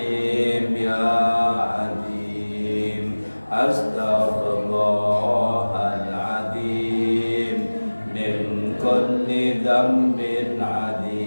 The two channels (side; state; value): both; inverted; correlation -1.00